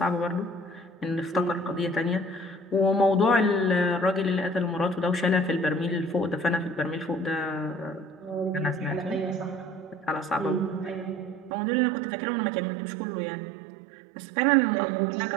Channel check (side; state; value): left; drops out; at 11.5 s